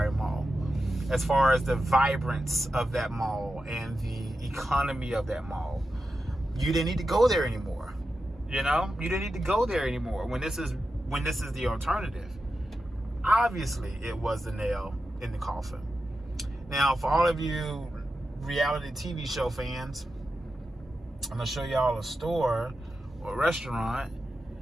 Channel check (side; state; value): both; normal; correlation 0.90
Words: Mall, as far as the vibrance of that mall and the economy of that mall. You didn't need to go there anymore. You know, you didn't need to go there anymore when this is the alternative. Obviously, it was the nail in the coffin. Now, for all of you reality TV show fans, I'm going to show y'all a store or a restaurant